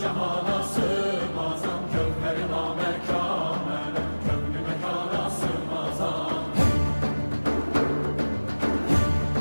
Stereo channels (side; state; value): both; inverted; correlation -1.00